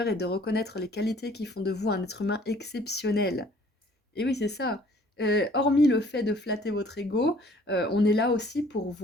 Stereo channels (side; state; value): both; normal; correlation 0.56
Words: et de reconnaître les qualités qui font de vous un être humain exceptionnel. Et oui, c'est ça. Hormis le fait de flatter votre ego, on est là aussi pour